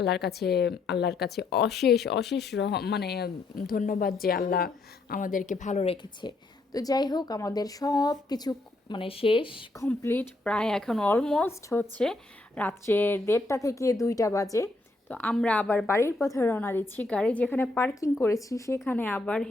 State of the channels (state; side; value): quieter; right; 3.1 dB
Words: কাছে, আল্লাহর কাছে অশেষ অশেষ মানে ধন্যবাদ যে আল্লাহ আমাদেরকে ভালো রেখেছে। তো যাই হোক, আমাদের সব কিছু মানে শেষ কমপ্লিট, প্রায় এখন অলমোস্ট হচ্ছে রাত্রের 1:30 থেকে 2টা বাজে। তো আমরা আবার বাড়ির পথে রওনা দিচ্ছি। গাড়ি যেখানে পার্কিং করেছি সেখানে আবার